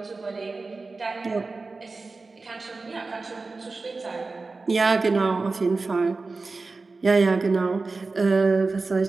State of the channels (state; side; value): quieter; left; 3.8 dB